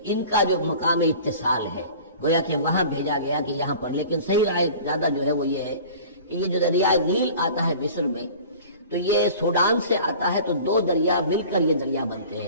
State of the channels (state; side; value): inverted; both; correlation -0.43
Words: ان کا جو مقام اتصال ہے گویا کہ وہاں بھیجا گیا کہ یہاں پر، لیکن صحیح رائے زیادہ جو ہے وہ یہ ہے کہ یہ جو دریائے نیل آتا ہے مصر میں، تو یہ سوڈان سے آتا ہے، تو 2 دریا مل کر یہ دریا بنتے